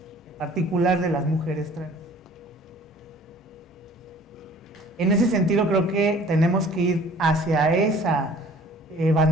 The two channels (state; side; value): normal; both; correlation 0.51